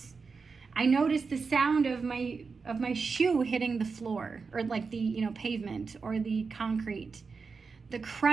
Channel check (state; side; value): quieter; left; 4.9 dB